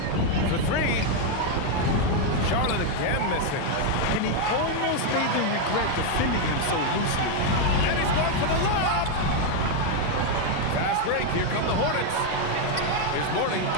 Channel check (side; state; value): both; different; correlation 0.01